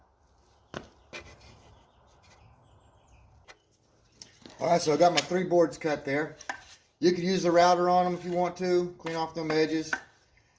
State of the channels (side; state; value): both; identical; correlation 1.00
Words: Alright, so I got my 3 boards cut there. You can use the router on them if you want to, clean off them edges.